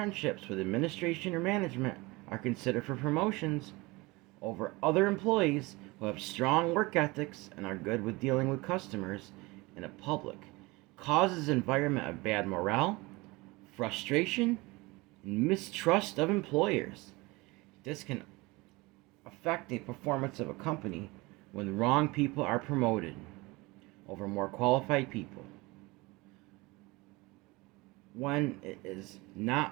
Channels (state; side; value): quieter; left; 23.4 dB